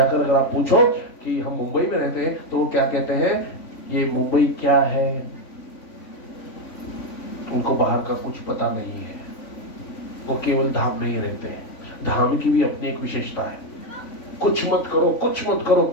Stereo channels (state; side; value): late; right; 3.5 ms